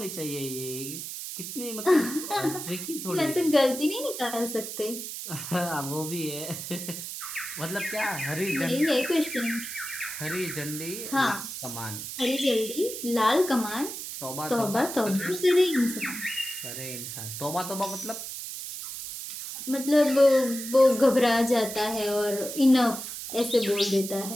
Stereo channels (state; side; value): noise; right; hiss, 8 dB below the sound